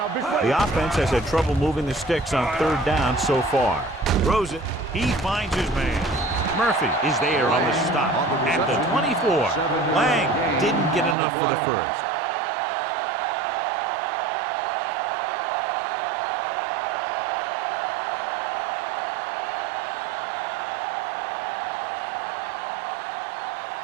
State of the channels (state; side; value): drops out; left; at 11.2 s